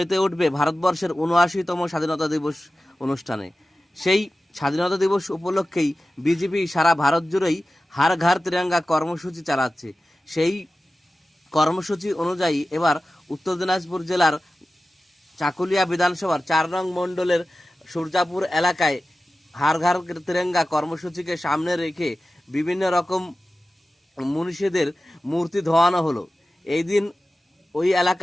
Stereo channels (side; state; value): both; normal; correlation 0.95